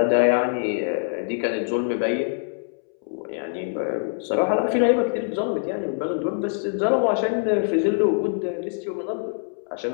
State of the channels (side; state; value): right; silent; 63 dB below the other